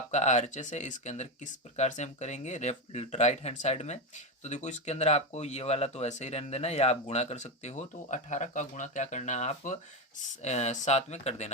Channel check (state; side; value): normal; both; correlation 0.12